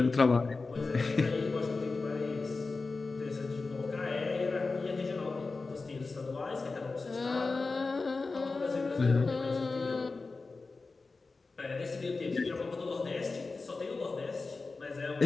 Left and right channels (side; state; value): right; quieter; 3.9 dB